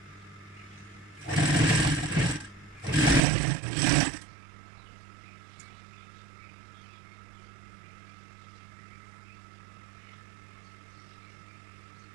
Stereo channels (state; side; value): drops out; left; at 3.2 s